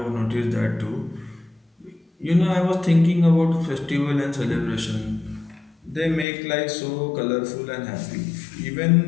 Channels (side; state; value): right; drops out; at 6.2 s